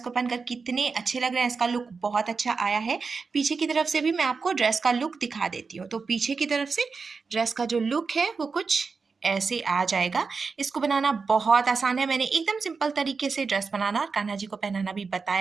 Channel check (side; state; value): left; quieter; 4.8 dB